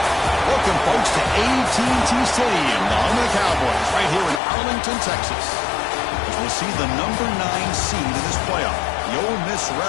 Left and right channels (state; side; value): drops out; right; at 4.4 s